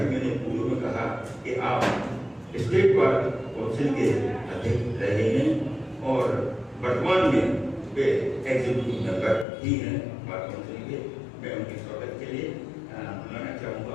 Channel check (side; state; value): right; drops out; at 9.5 s